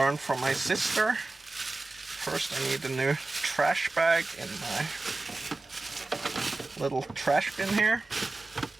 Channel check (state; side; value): quieter; left; 3.2 dB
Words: from my sister. First I need a new trash bag in my little trash bin here.